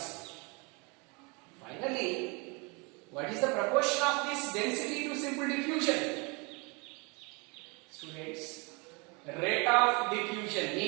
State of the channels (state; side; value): quieter; left; 30.0 dB